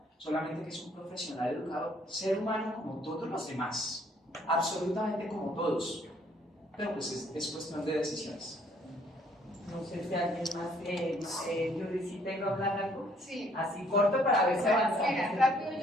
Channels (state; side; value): normal; both; correlation 0.64